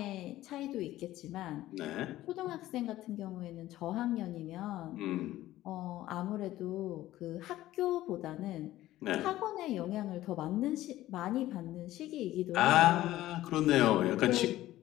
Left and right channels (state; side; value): quieter; right; 15.1 dB